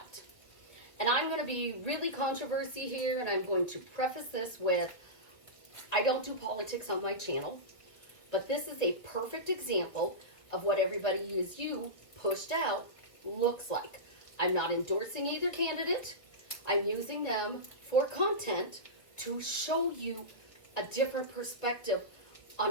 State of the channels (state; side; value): late; right; 2.1 ms